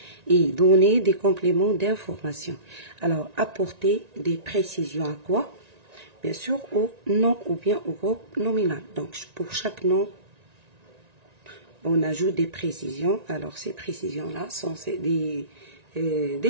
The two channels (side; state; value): left; late; 1.9 ms